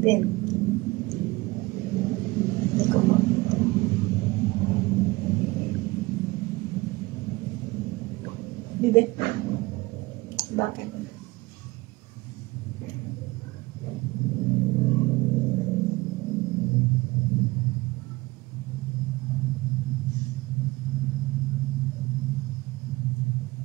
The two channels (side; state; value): left; quieter; 21.6 dB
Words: Hindi ko makita. Bibe? Bakit?